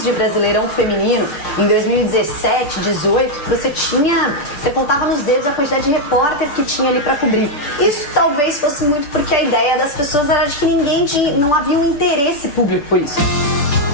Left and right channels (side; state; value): right; late; 6.9 ms